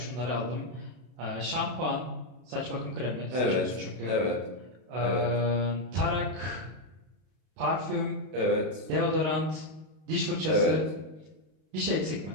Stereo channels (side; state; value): left; late; 32 ms